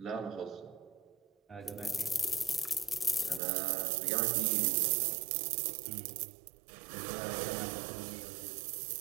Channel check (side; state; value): left; drops out; at 3.4 s